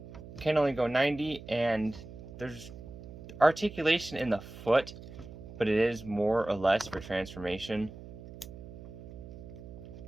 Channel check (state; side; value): noise; right; hum, 14 dB below the sound